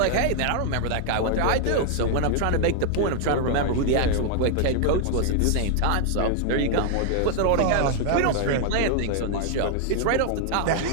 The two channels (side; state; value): both; different; correlation 0.00